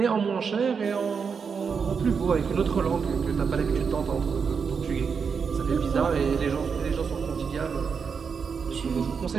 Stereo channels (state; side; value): quieter; left; 6.0 dB